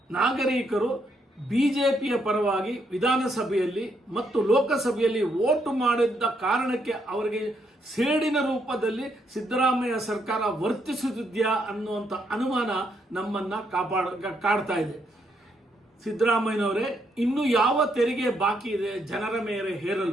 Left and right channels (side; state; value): both; normal; correlation 0.76